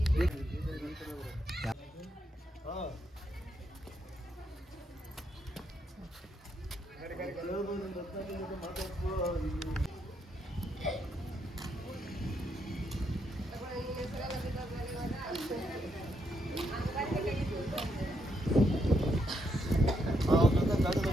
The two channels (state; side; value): normal; both; correlation 0.78